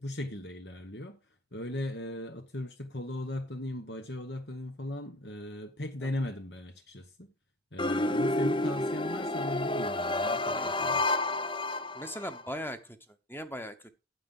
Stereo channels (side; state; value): both; normal; correlation 0.36